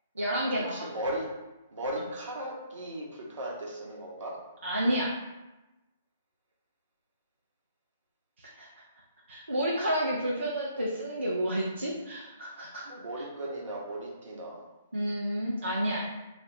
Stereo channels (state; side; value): inverted; both; correlation -0.67